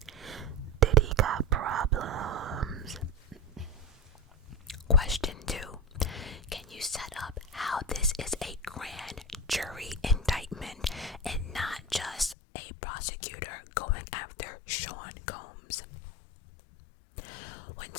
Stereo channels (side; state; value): right; drops out; at 12.4 s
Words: Diddy got problems. Question 2. Can you set up how this is a grand jury indictment and not just a prosecutor going after Sean Combs? When